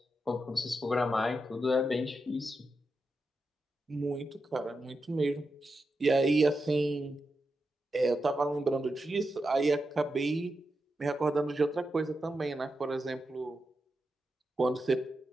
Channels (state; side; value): normal; both; correlation 0.88